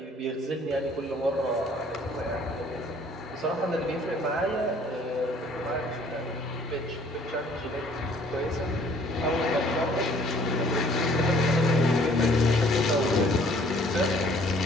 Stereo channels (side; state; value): both; normal; correlation 0.57